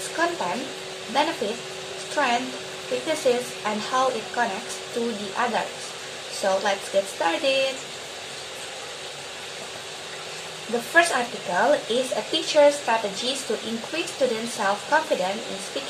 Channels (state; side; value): identical; both; correlation 1.00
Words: content, benefits, strength, weaknesses, and how it connects to the others. So let's get started. The first article is a teacher's strategies to increase students' self-confidence in